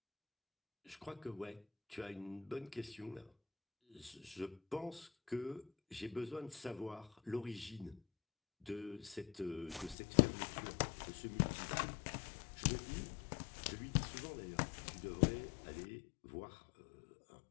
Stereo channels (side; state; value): right; drops out; at 10.0 s